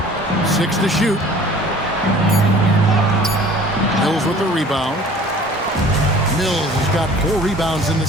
6 to shoot. Mills with the rebound. Mills has got 4 rebounds in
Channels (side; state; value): both; normal; correlation 0.48